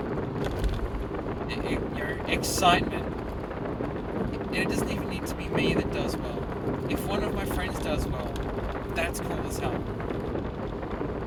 excitement. And it doesn't even need to be me that does well. If one of my friends does well, that's cool as hell.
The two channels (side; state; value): both; identical; correlation 1.00